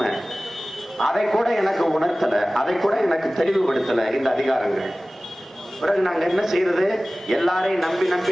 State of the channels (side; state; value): both; normal; correlation 0.97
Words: அதை கூட எனக்கு உணர்த்தல, அதை கூட எனக்கு தெளிவுபடுத்தல இந்த அதிகாரங்கள். பிறகு நாங்க என்ன செய்யறது? எல்லாரையும்